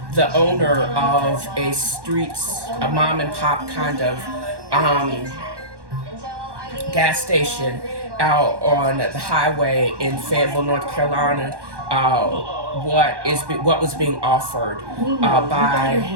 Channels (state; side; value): late; left; 1.1 ms